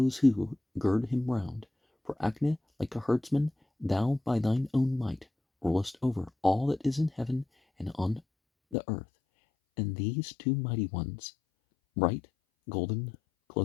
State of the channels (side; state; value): right; drops out; at 8.8 s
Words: who gird him round. For Agni, like a herdsman, thou by thine own might rulest over all that is in heaven and on the earth. And these two mighty ones, bright, golden,